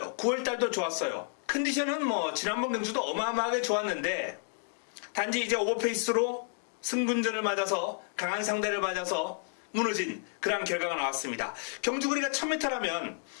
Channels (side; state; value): right; silent; 56 dB below the other